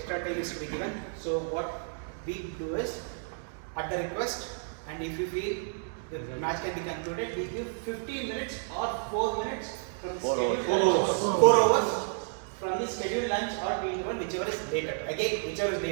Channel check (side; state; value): left; silent; digital silence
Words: time is to be given. So what we do is, at the request, and if we feel the match can be concluded, we give 15 minutes or 4 minutes from the scheduled lunch, 4 hours from the scheduled lunch or tea interval, whichever is later. Again, whichever is